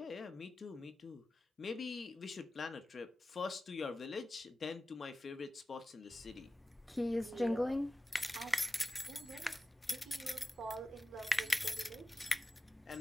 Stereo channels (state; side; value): normal; both; correlation 0.95